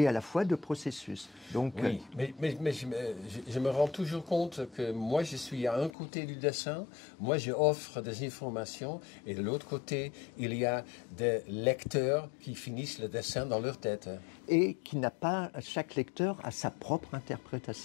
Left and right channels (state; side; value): drops out; right; at 5.9 s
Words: à la fois de processus. Donc, oui, mais je me rends toujours compte que moi je suis à un côté du dessin, moi je offre des informations et de l'autre côté il y a des lecteurs qui finissent le dessin dans leur tête. Et qui n'a pas, chaque lecteur a sa propre